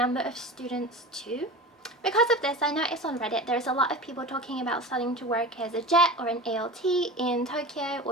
of students too. Because of this, I noticed on Reddit there's a lot of people talking about starting to work as a JET or an ALT in Tokyo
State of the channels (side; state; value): both; normal; correlation 0.32